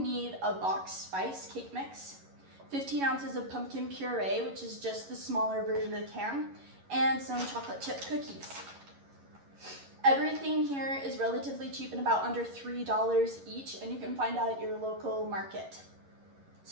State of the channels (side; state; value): left; late; 11 ms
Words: a box spice cake mix, 15 ounces of pumpkin puree, which is just the smaller version of the can, and some chocolate chip cookies. Everything here is relatively cheap and about under $3 each, and you can find out at your local market.